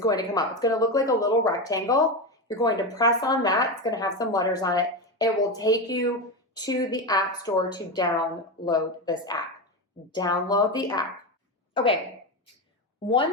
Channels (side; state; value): both; normal; correlation 0.16